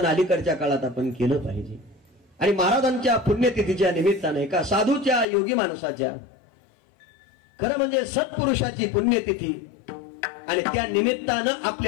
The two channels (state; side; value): drops out; right; at 5.2 s